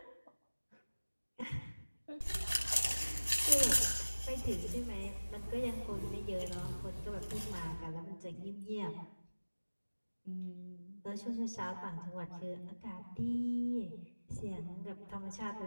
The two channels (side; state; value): both; inverted; correlation -1.00